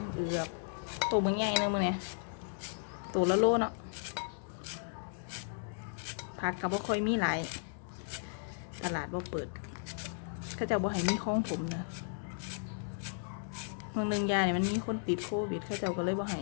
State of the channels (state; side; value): silent; right; 54 dB below the other